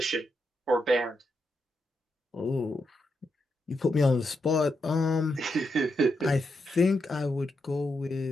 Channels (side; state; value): both; normal; correlation 0.84